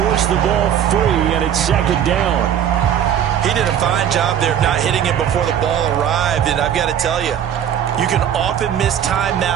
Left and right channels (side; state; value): left; quieter; 9.5 dB